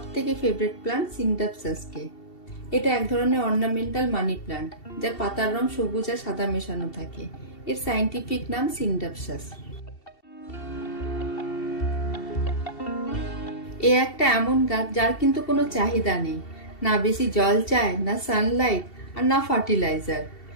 থেকে ফেভারিট প্ল্যান্ট সিনডাপসাসকে। এটা এক ধরনের অর্নামেন্টাল মানি প্ল্যান্ট, যার পাতার রং সবুজ আর সাদা মেশানো থাকে। এর সায়েন্টিফিক নাম সিনডাপসাস। এ একটা এমন গাছ যার কিন্তু কোনো চাহিদা নেই, না বেশি জল চায়, না সানলাইট, আর না ফার্টিলাইজার।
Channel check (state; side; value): late; right; 2.7 ms